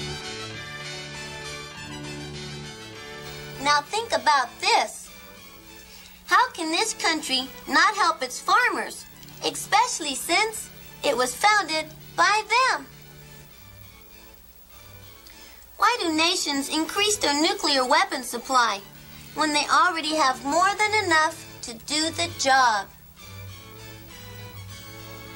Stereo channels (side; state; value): both; identical; correlation 1.00